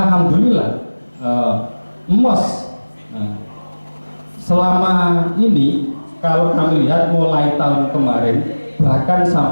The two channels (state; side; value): inverted; both; correlation -1.00